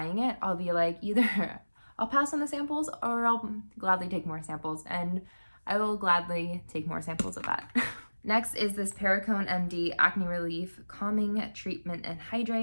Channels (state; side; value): inverted; both; correlation -1.00